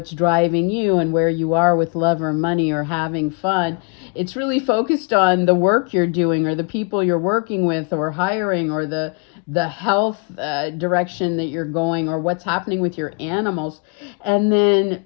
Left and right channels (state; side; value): quieter; right; 32.7 dB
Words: driving you and where you are with love or money or having fun, it's really focused on the work you're doing or the people you're working with or hiring or the health direction that you're going or what's happening with your animals. And then